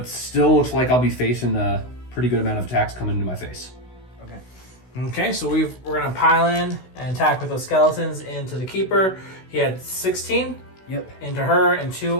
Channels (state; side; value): late; right; 16 ms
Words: still looks like I'll be facing a pretty good amount of attacks coming into my face. Okay. Okay, so we're going to pile in and attack with those skeletons into the Keeper. He had 16 Yep. into her and